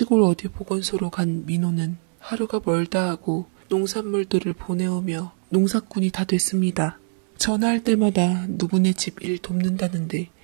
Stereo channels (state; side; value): silent; left; 63 dB below the other